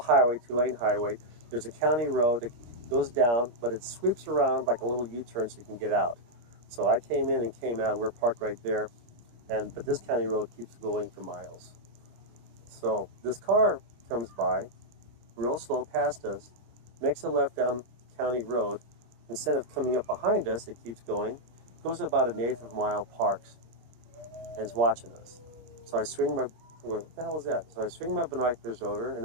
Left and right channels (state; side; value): late; left; 25 ms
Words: 2-lane highway. There's a county road that goes down, but it sweeps around like a little U-turn so you can get out. So I came in and came out. We're parked right there, but this county road keeps going for miles. So this car comes by, real slow past us, makes a left down county road. Instead of coming up behind us, it keeps going, goes about 1/8 of a mile, parks, and is watching us. So I swing my, what the hell was that? So I swing my binoculars over, and